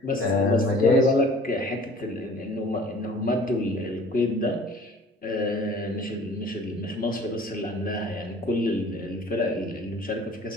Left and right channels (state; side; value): normal; both; correlation 0.49